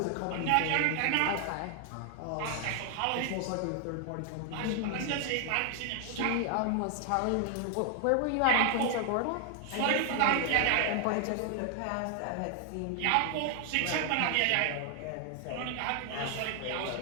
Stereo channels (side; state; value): both; different; correlation 0.00